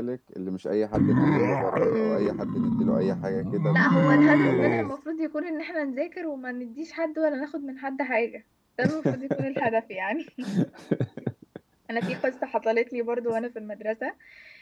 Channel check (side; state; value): both; identical; correlation 1.00